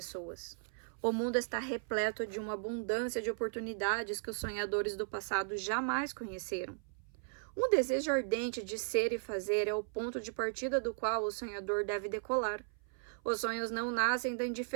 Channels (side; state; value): left; silent; 54 dB below the other